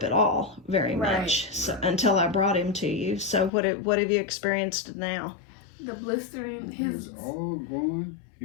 at all very much until I brought him to you. So what have you experienced now? The blistering, It's all going.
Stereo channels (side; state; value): right; drops out; at 3.5 s